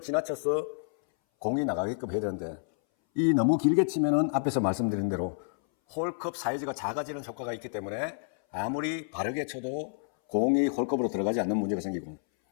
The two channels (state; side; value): silent; right; 58 dB below the other